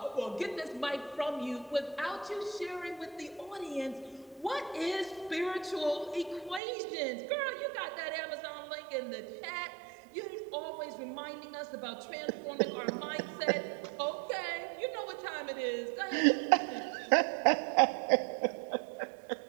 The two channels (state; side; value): drops out; left; at 6.6 s